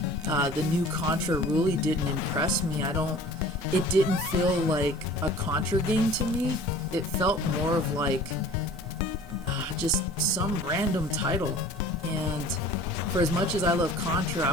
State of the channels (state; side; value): normal; both; correlation 0.46